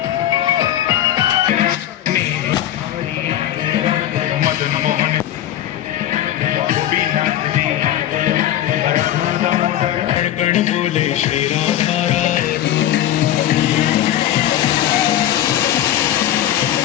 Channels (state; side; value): quieter; right; 12.3 dB